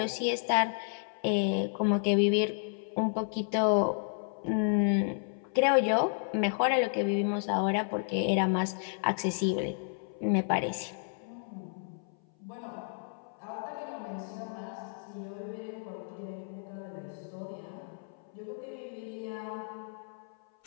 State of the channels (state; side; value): silent; right; 56 dB below the other